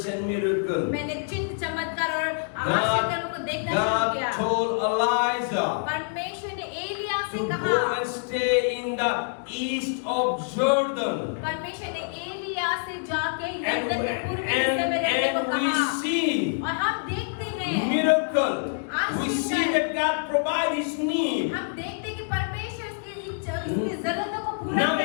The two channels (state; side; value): silent; right; digital silence